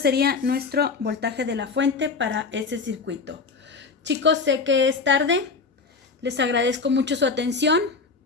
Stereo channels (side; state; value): right; quieter; 4.6 dB